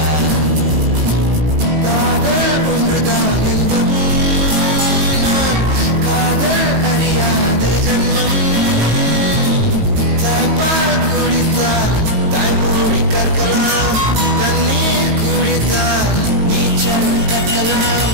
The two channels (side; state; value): left; late; 19 ms